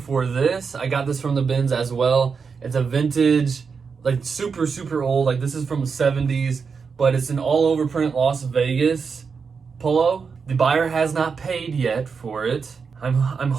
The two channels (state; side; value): quieter; left; 5.5 dB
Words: this. I got this from the bins as well. It's a vintage, like super old, like this is from the 70s, but it's an all over print Las Vegas polo. The buyer has not paid yet for it. I'm